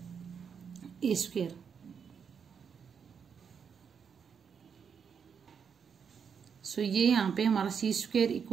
a²। सो ये यहाँ पे हमारा c²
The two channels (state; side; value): quieter; left; 6.8 dB